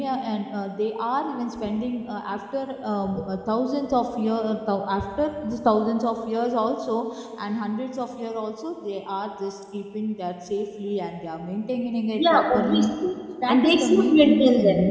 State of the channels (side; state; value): both; identical; correlation 1.00